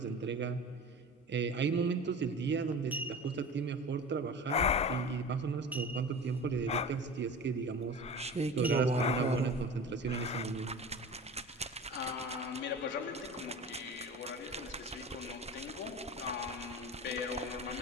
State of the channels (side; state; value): both; normal; correlation 0.35